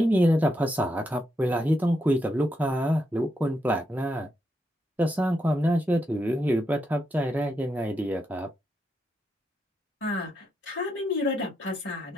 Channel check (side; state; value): both; normal; correlation 0.82